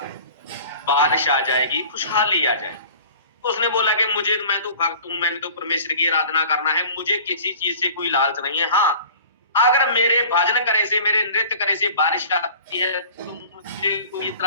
बारिश आ जाएगी, खुशहाली आ जाएगी। उसने बोला कि मैं तो भक्त हूं, मैंने तो परमेश्वर की आराधना करना है, मुझे किसी चीज से कोई लालच नहीं है। हाँ अगर मेरे भजन करे से, मेरे नृत्य करे से बारिश आती है तो मुझे कोई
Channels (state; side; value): inverted; both; correlation -0.43